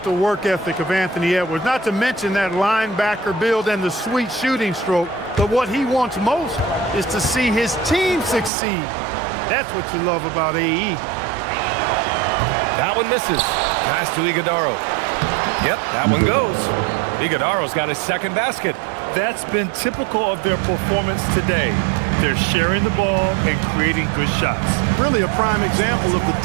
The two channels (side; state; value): left; drops out; at 8.5 s